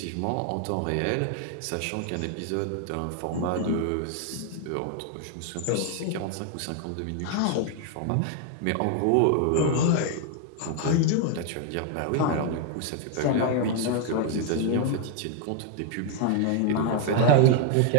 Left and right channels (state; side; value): different; both; correlation 0.00